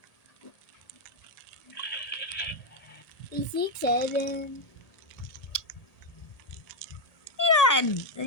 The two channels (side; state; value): right; late; 1.8 ms